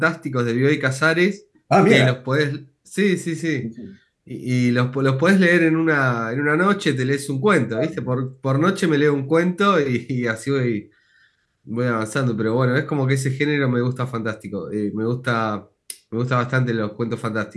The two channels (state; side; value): identical; both; correlation 1.00